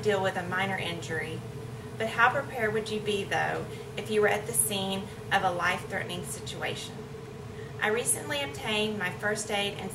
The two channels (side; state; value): both; identical; correlation 1.00